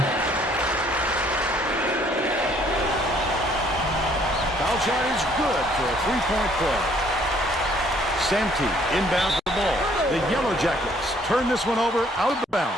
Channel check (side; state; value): both; normal; correlation 0.62